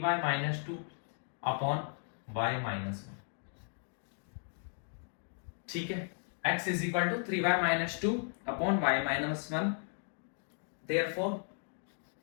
minus 2 upon y minus 1। ठीक है, x is equal to 3y minus 2 upon y minus 1। Therefore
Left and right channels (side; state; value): right; silent; 54 dB below the other